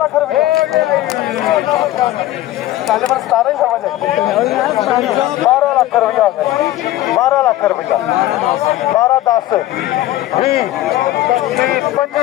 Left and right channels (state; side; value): quieter; right; 15.0 dB